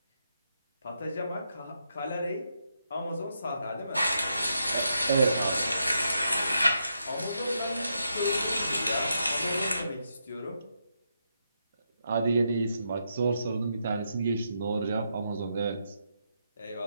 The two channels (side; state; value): both; inverted; correlation -0.82